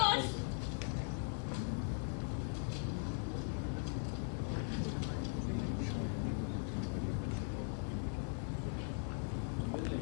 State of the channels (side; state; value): right; silent; 51 dB below the other